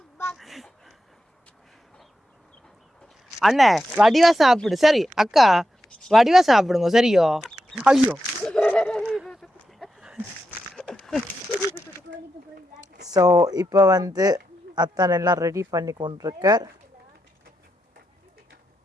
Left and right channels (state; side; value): normal; both; correlation 0.86